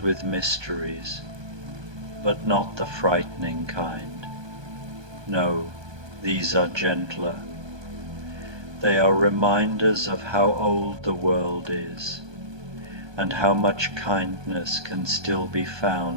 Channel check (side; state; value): left; late; 1.2 ms